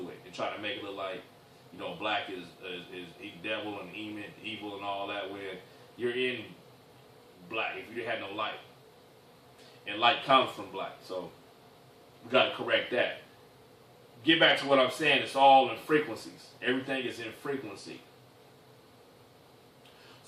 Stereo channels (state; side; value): identical; both; correlation 1.00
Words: it and try to make it look like, black is devil and evil and all that. When you're in black, if you had no light, and light comes from black. So We got to correct that. Get back to what I'm saying. It's all in frequencies. Everything is in frequency.